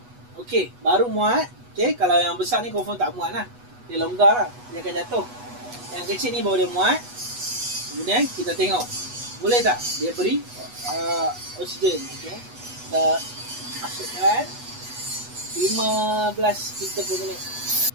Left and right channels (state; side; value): late; left; 8.2 ms